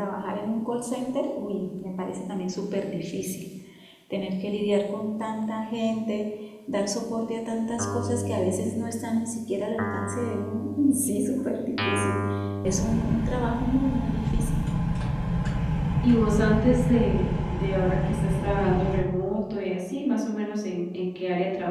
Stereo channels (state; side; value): identical; both; correlation 1.00